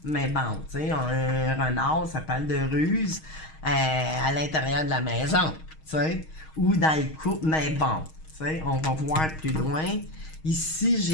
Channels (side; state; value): right; late; 6.4 ms